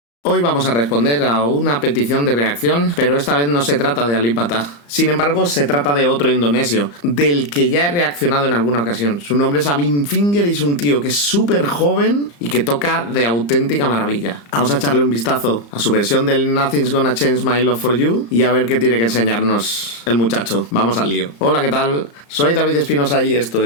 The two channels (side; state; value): right; late; 35 ms